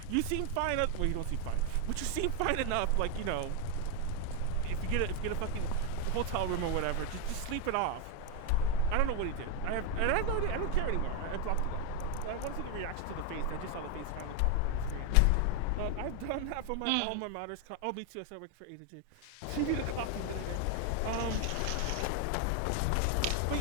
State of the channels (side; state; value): both; different; correlation 0.01